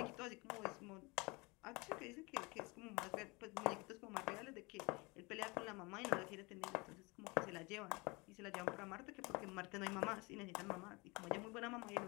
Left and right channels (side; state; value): right; quieter; 26.6 dB